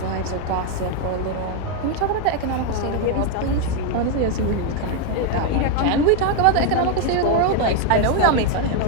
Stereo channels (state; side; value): different; both; correlation 0.01